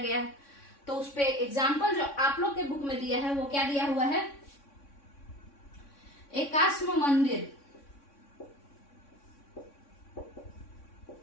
है। तो उस पे एग्जाम्पल जो आप लोग के बुक में दिया है वो क्या दिया हुआ है, एकाश्म मंदिर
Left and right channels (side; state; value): right; late; 3.6 ms